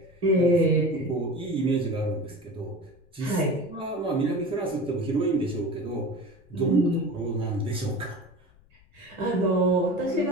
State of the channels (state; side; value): noise; left; rumble, 29 dB below the sound